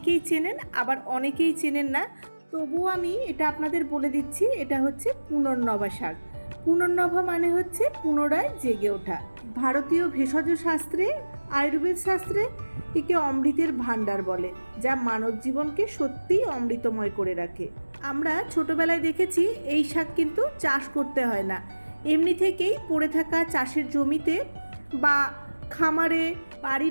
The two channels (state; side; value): inverted; both; correlation -1.00